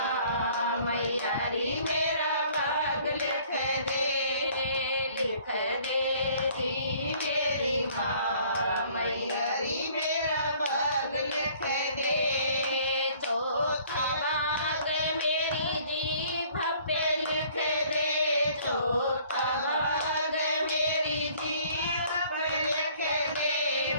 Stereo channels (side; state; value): both; inverted; correlation -0.57